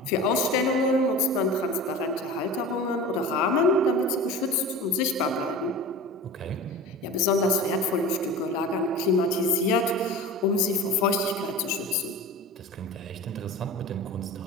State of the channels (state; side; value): normal; both; correlation 0.34